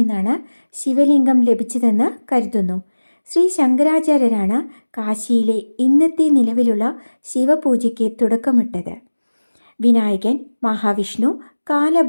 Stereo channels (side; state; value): both; inverted; correlation -1.00